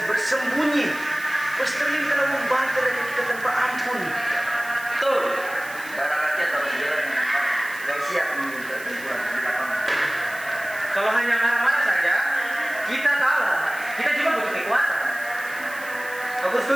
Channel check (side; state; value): right; noise; hiss, 16 dB below the sound